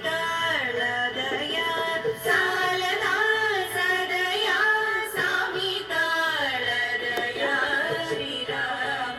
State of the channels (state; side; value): identical; both; correlation 1.00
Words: తాళదయ సాలరా సదయా స్వామి తాళదయ